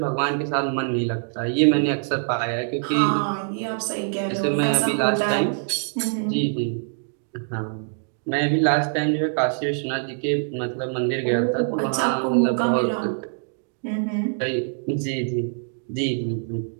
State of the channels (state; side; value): silent; left; digital silence